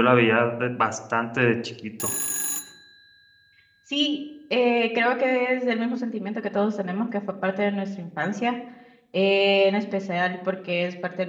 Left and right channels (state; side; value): identical; both; correlation 1.00